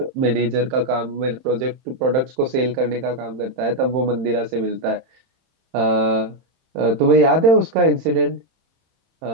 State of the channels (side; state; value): left; late; 31 ms